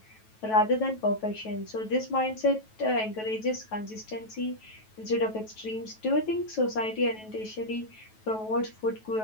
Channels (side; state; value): right; late; 9.2 ms